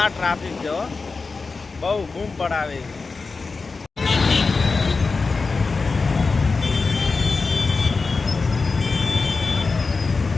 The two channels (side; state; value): right; quieter; 4.2 dB